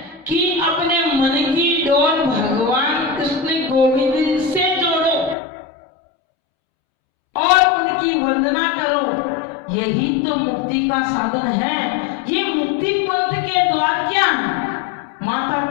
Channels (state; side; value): drops out; right; at 5.4 s